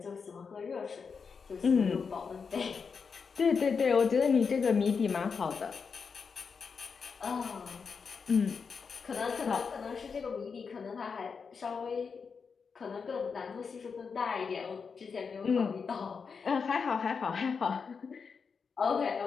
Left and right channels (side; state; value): right; quieter; 5.6 dB